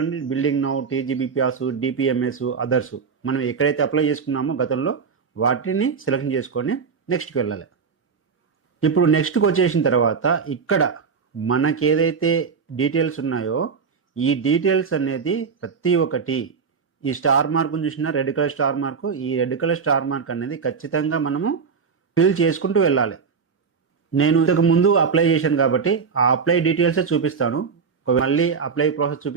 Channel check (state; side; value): quieter; left; 5.8 dB